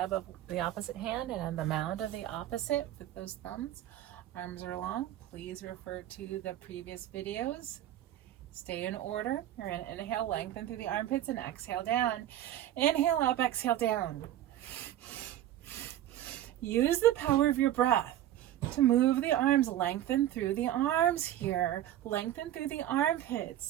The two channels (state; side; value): quieter; left; 12.5 dB